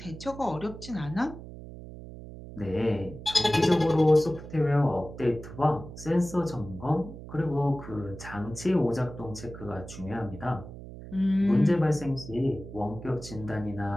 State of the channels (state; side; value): noise; right; hum, 13 dB below the sound